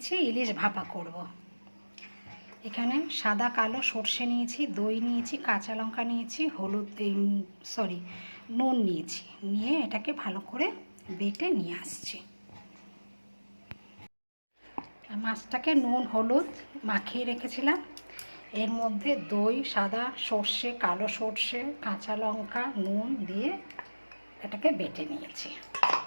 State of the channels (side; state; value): both; inverted; correlation -1.00